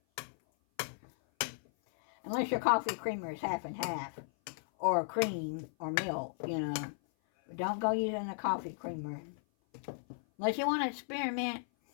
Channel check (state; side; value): silent; right; 54 dB below the other